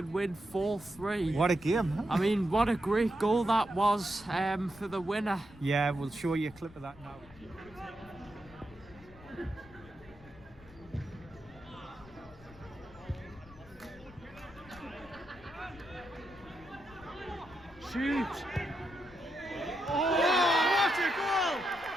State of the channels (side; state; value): left; noise; rumble, 22 dB below the sound